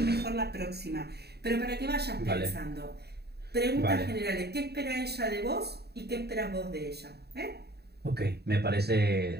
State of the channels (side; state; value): left; late; 0.47 ms